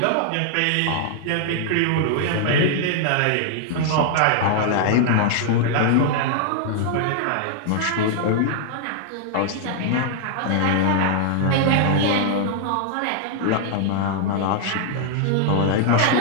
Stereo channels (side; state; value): both; different; correlation -0.01